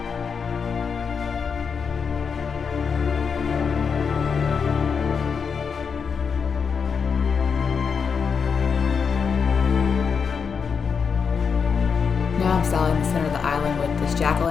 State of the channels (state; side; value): quieter; right; 6.0 dB